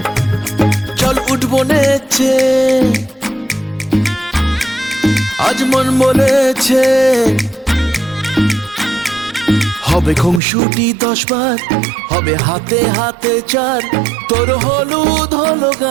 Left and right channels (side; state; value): left; drops out; at 10.4 s